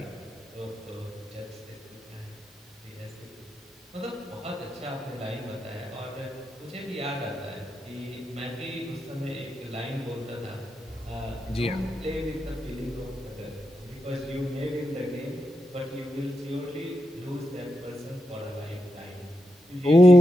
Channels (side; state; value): both; normal; correlation 0.86